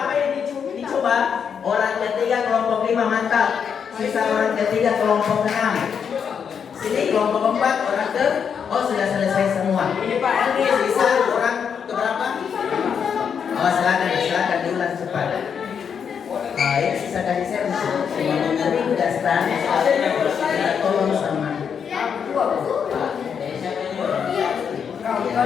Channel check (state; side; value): quieter; right; 7.1 dB